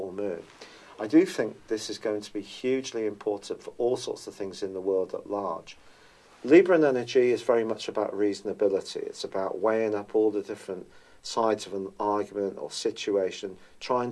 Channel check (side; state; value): both; identical; correlation 1.00